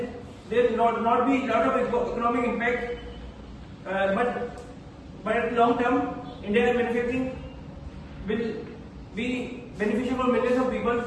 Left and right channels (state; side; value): identical; both; correlation 1.00